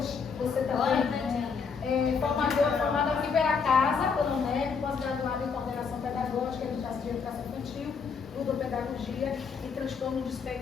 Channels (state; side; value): quieter; right; 5.6 dB